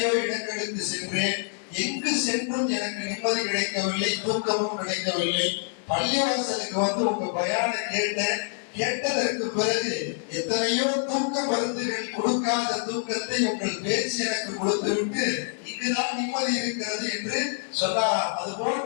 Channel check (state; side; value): silent; right; 61 dB below the other